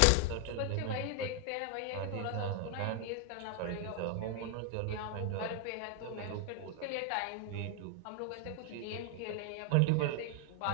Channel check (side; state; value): both; different; correlation 0.00